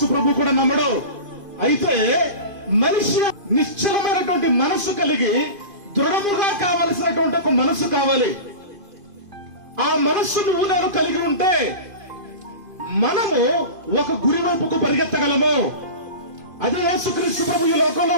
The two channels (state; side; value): late; left; 2.5 ms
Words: ప్రభు కూడా నమ్మడు. అయితే మనిషి నిశ్చలమైనటువంటి మనసు కలిగి దృఢముగా కావలసినటువంటి ఒక మనసు కావాలి. ఆ మనస్సు నువ్వు నేను కలిగి ఉంటే మనము ఒక గురి వైపుకు పరిగెత్తగలము. అదే యేసుక్రీస్తు ప్రభు ఈ